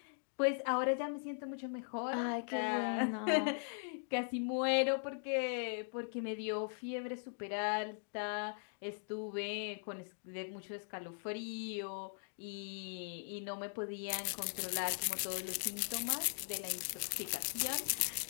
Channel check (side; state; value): right; silent; digital silence